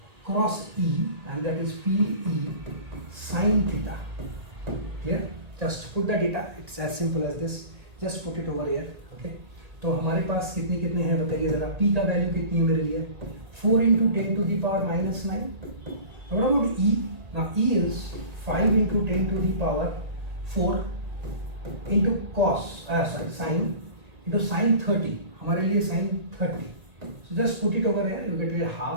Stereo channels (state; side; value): late; left; 1.8 ms